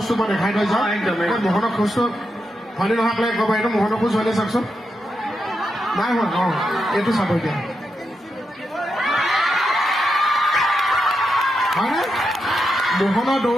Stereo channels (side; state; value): both; normal; correlation 0.85